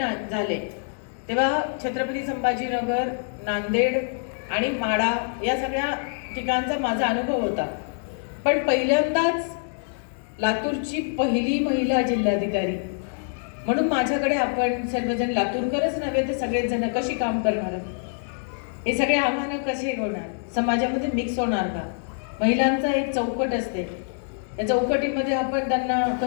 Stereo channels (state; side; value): silent; right; 62 dB below the other